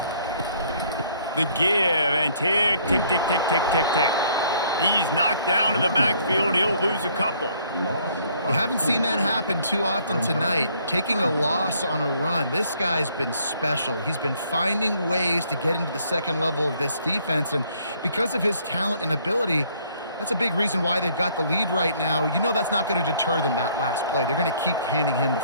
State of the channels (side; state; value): both; inverted; correlation -0.63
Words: The give and tick, tick, tick, tick, tick, tick, tick. He's knocked down in the backfield. He'll lose a couple. You haven't seen that happen too often tonight, taking a loss on a run. This guy's been special. He's been finding ways to get into the second level of this defense, and because of his talent and ability, that's a big reason why they've got the lead right now. You know that's not going to deter them, that last play. They're going to keep handing him the